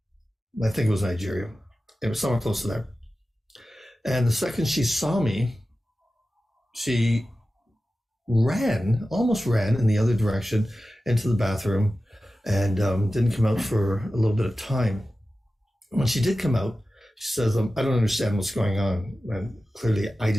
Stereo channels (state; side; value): normal; both; correlation 0.94